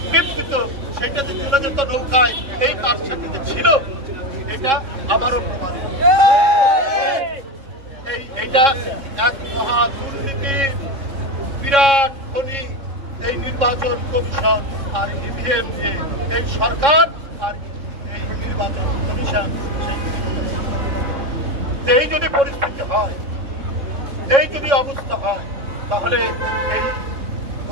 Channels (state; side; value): late; left; 3.6 ms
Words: টিপ দিত, সেইটাতে চলে যেত নৌকায়, এই কারসাজিতে ছিল, এটা আবারও প্রমাণিত। এইটা এক মহা দুর্নীতির বিরাট খনি। এই নির্বাচন কমিশন আর ইভিএম দিয়ে এই সরকার আর এই নির্বাচন কমিশন এই যদি পরিস্থিতি হয়, এই যদি অবস্থা হয়, তাহলে এই